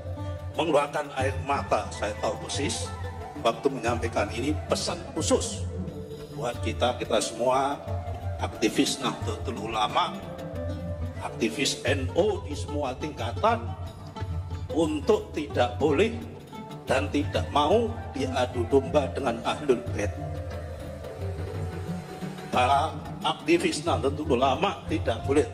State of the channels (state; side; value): identical; both; correlation 1.00